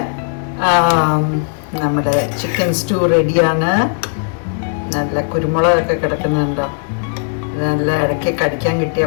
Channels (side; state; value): right; silent; 62 dB below the other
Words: നമ്മുടെ ചിക്കൻ സ്റ്റൂ റെഡിയാണ്. നല്ല കുരുമുളകൊക്കെ കിടക്കുന്നുണ്ടോ. നല്ല ഇടയ്ക്ക് കടിക്കാൻ കിട്ടിയ